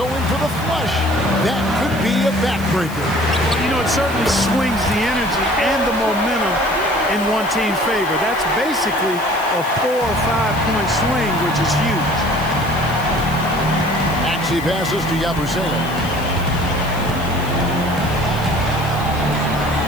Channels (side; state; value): left; noise; hiss, 17 dB below the sound